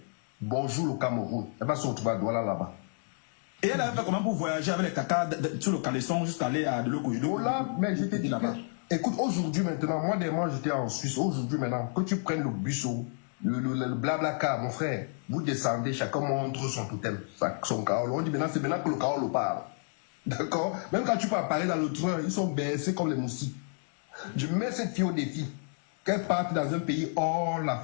Bonjour le Cameroun. Elle va se retrouver à Douala là-bas. Et elle a fait comment pour voyager avec les caca sur le calaisson jusqu'à aller à de l'eau. Oh là, mais je te dis que, écoute, aujourd'hui maintenant, moi j'étais en Suisse, aujourd'hui maintenant, que tu prennes le bus, le blabla car, mon frère, vous descendez, chacun montre son totem, son carole. On dit maintenant, c'est maintenant que le carole parle. D'accord? Même quand tu peux parler dans le train, ils sont baissés comme les moustiques. Je mets cette fille au défi, qu'elle parte dans un pays hors la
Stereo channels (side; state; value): right; silent; 58 dB below the other